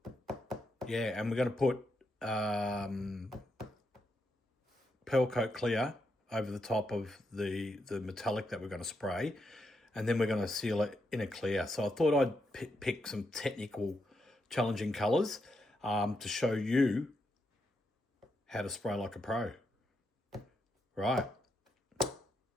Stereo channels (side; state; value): both; normal; correlation 0.82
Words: and we're going to put pearl coat clear over the top of the metallic that we're going to spray, and then we're going to seal it in a clear. So I thought I'd pick some technical, challenging colours to show you how to spray like a pro. Right,